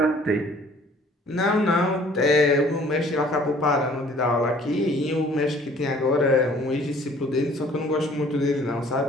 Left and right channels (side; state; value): both; normal; correlation 0.55